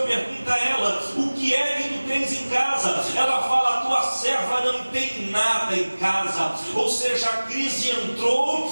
a ela: o que é que tu tens em casa? Ela fala: a tua serva não tem nada em casa. Ou seja, a crise entrou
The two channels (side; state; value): both; inverted; correlation -1.00